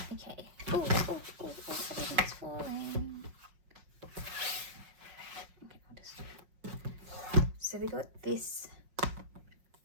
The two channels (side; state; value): left; late; 5.5 ms